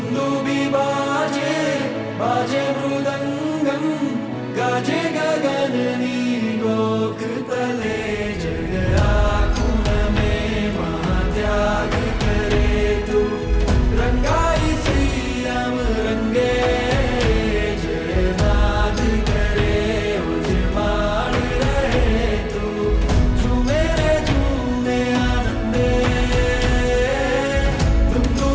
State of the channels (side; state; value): both; identical; correlation 1.00